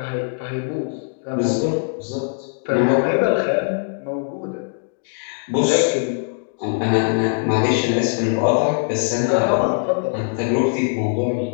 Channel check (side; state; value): right; silent; digital silence